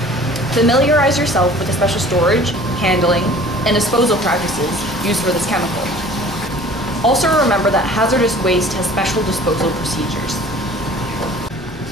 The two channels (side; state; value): both; normal; correlation 0.48